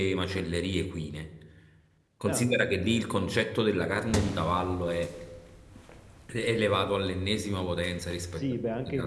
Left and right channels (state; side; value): identical; both; correlation 1.00